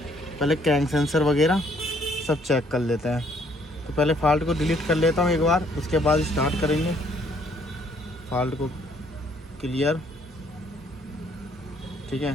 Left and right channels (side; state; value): both; normal; correlation 0.65